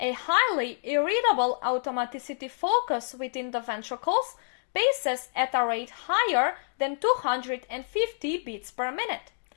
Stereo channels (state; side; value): silent; right; digital silence